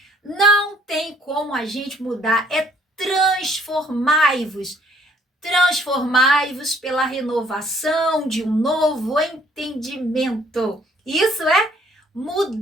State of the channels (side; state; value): both; normal; correlation 0.62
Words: não tem como a gente mudar. É transformai-vos. Transformai-vos pela renovação de um novo entendimento. Isso é